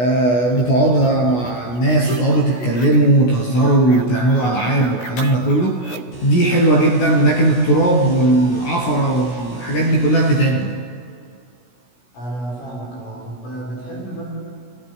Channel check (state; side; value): late; right; 16 ms